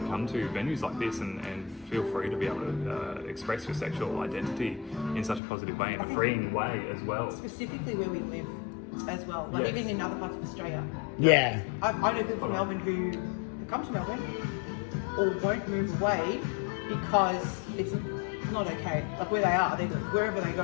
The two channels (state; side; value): drops out; right; at 5.4 s